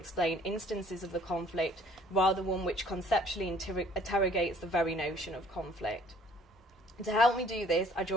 instances of the conflict, rather one which conceptually interrogates the very notion of conflict. To help me do this, I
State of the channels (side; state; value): both; normal; correlation 0.56